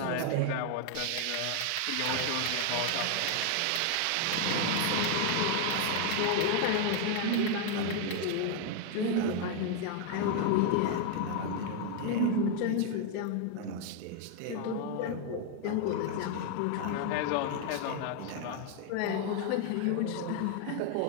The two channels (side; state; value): both; different; correlation 0.00